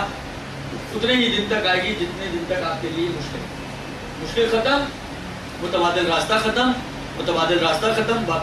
اتنے ہی دن تک آئے گی جتنے دن تک آپ کے لیے مشکل ختم، متبادل راستہ ختم، متبادل راستہ ختم،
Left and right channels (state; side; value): identical; both; correlation 1.00